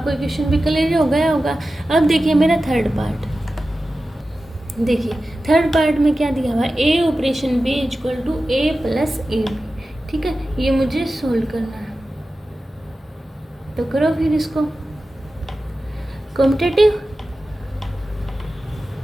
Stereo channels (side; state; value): both; normal; correlation 0.94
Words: क्वेश्चन भी क्लियर हो गया होगा। अब देखिए मेरा थर्ड पार्ट, देखिए थर्ड पार्ट में क्या दिया हुआ है, ए operation B equal to A plus A B. ठीक है, ये मुझे सोल्व करना है, तो करो फिर इसको। कॉम्पिटेटिव